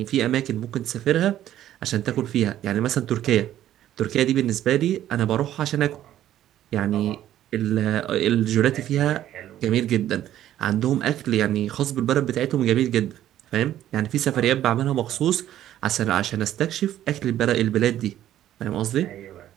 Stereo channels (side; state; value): left; quieter; 12.3 dB